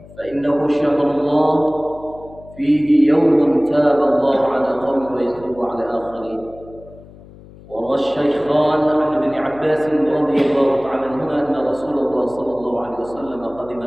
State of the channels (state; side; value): noise; left; hum, 21 dB below the sound